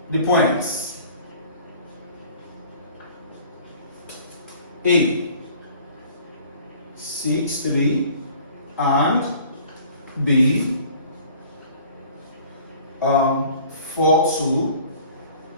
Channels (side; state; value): both; inverted; correlation -0.50